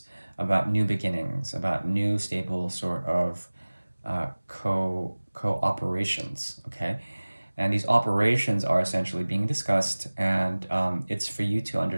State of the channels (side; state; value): both; inverted; correlation -1.00